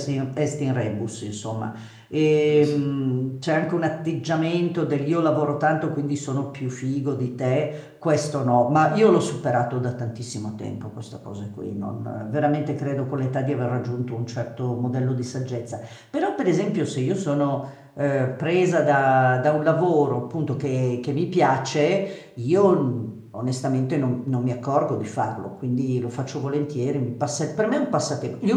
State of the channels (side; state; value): both; identical; correlation 1.00